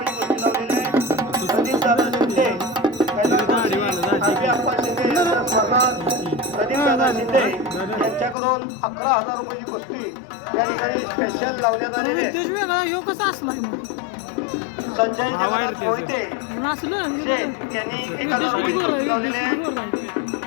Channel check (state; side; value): drops out; right; at 8.3 s